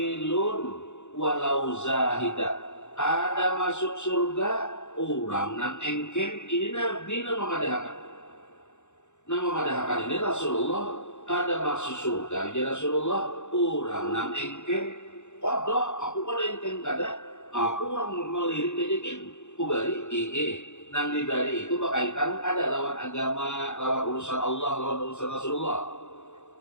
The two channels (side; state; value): right; late; 0.83 ms